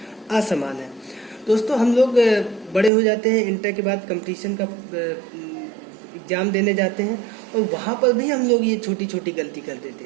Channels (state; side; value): drops out; left; at 2.9 s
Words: असमान है। दोस्तों, हम लोग बड़े हो जाते हैं, इंटर के बाद कंपटीशन का एग्ज़ाम देने जाते हैं और वहाँ पर भी हम लोग ये छोटी छोटी गलती कर देते